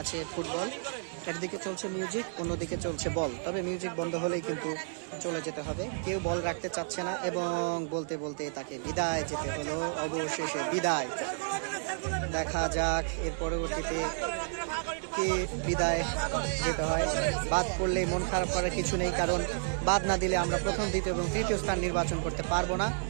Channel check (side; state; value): left; silent; digital silence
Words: আছে ফুটবল। একদিকে চলছে মিউজিক, অন্যদিকে চলছে বল। তবে মিউজিক বন্ধ হলেই কিন্তু চলে যেতে হবে, কেউ বল রাখতে চাচ্ছে না এবং বলতে বলতে তাকে বিদায় যেতে হলো, অবশেষে বিদায়। দেখা যাক এর পরবর্তীতে কে বিদায় যেতে হয়। বাদ পড়লে মন খারাপ করার কিছু নেই, কারণ বাদ না দিলে আমরা প্রথম, দ্বিতীয় এবং তৃতীয় স্থান নির্বাচন করতে পারবো না।